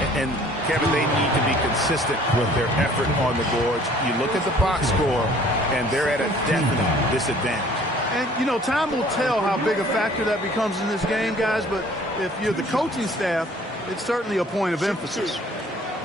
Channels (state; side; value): normal; both; correlation 0.54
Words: And Kevin, they need to be consistent with their effort on the boards. You look at the box score, and they're at a definite disadvantage. And, you know, time will tell how big a factor that becomes in this game, guys, but if you're the coaching staff, it's certainly a point of emphasis.